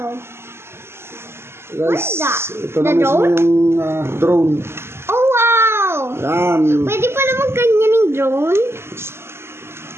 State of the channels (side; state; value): left; late; 0.12 ms